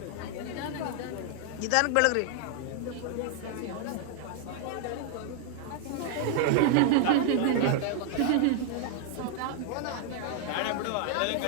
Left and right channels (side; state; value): both; different; correlation 0.00